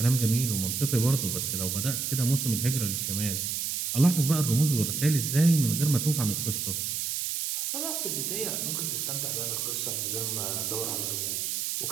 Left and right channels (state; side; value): noise; right; hiss, 1 dB below the sound